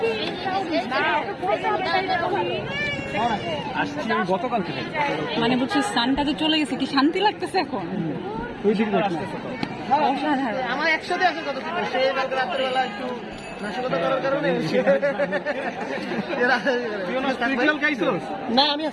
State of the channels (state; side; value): identical; both; correlation 1.00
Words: আসছি আমি গতকাল থেকে। মানে বুঝছিস সানটা যে চলে গেছে, কি শান্তি লাগতেছে এখন। ওই দিকে আসতেছে তো। অসাধারণ। আমার একসাথে আসে কত ছিল সে কালকে রাত্রেবেলা একটু নাশকতা করার কারণে তুই খাইছিস? না আমি